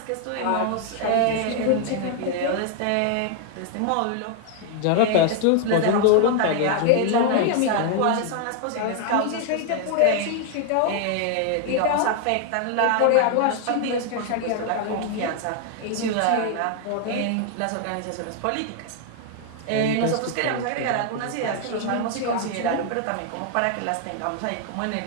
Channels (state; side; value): different; both; correlation 0.00